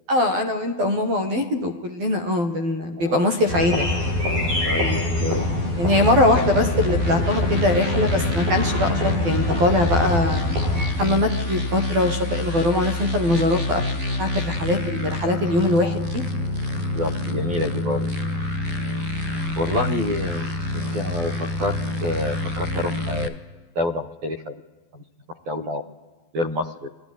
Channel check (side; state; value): left; late; 12 ms